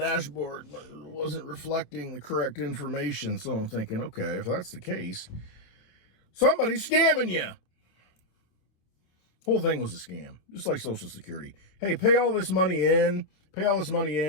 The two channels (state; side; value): late; right; 27 ms